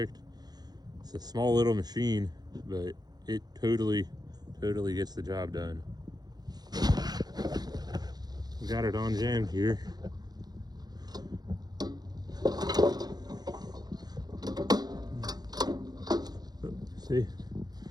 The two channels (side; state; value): left; late; 0.19 ms